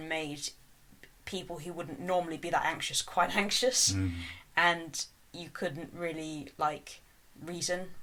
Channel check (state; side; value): identical; both; correlation 1.00